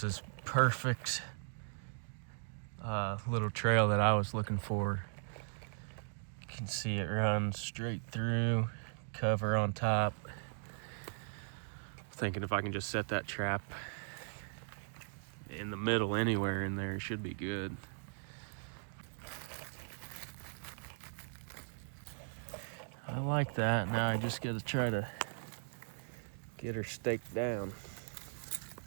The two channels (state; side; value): silent; left; digital silence